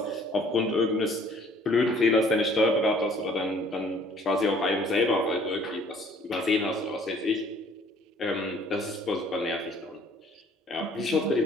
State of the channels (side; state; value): both; normal; correlation 0.57